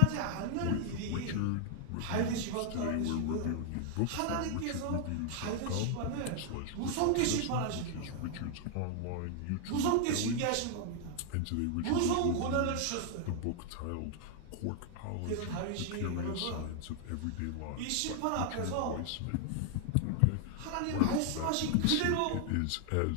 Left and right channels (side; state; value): both; different; correlation 0.00